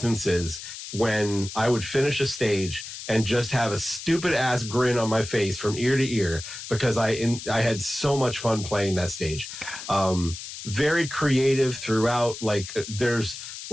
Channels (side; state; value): left; noise; hiss, 10 dB below the sound